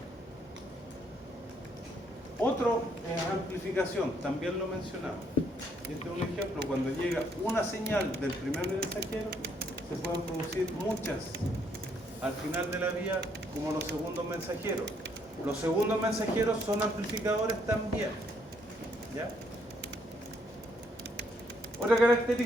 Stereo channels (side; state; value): both; normal; correlation 0.70